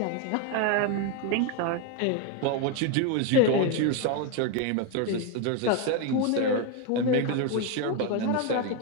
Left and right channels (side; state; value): both; different; correlation 0.02